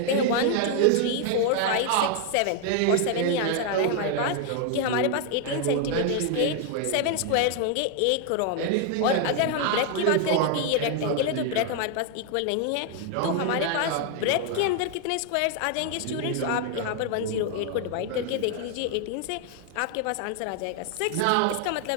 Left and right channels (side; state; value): both; different; correlation 0.00